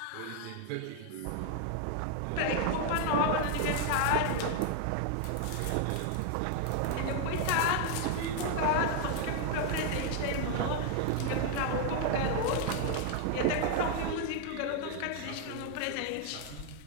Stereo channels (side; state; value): both; different; correlation 0.00